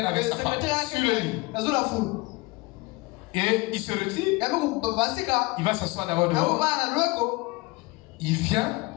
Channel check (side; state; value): right; quieter; 24.0 dB